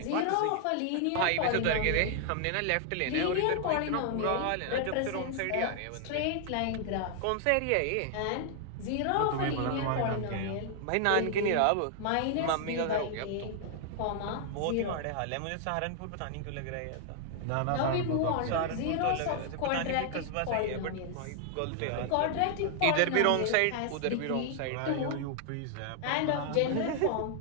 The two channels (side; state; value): both; different; correlation 0.00